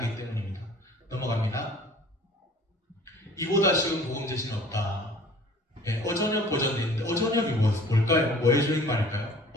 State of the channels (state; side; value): normal; both; correlation 0.49